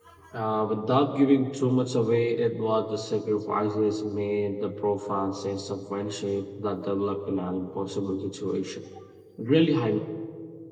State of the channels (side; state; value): both; identical; correlation 1.00